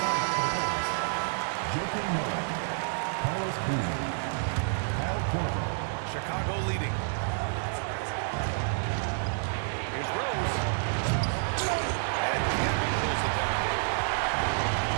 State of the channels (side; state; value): left; silent; digital silence